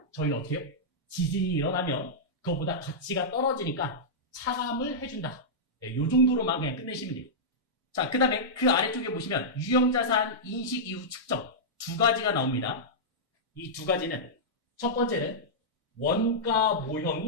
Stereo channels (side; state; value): both; normal; correlation -0.10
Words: 저희는 어떻게 해요? 지진이 일어나면 그거보다 가치가 떨어지니까 차감을 해준다. 네, 요 정도로만 그냥 끝내시면 돼요. 자, 그 다음에 그 아래쪽에 보시면 유형자산 인식 이후 측정 두 가지가 나옵니다. 이 두 가지는 첫 번째는 원가